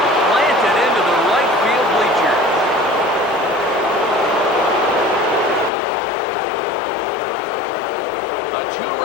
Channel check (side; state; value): right; drops out; at 5.7 s